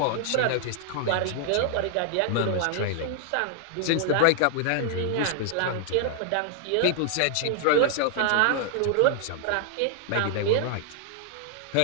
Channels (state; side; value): different; both; correlation -0.01